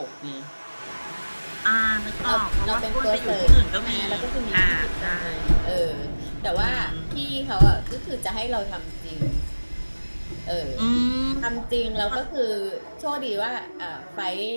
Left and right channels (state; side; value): inverted; both; correlation -1.00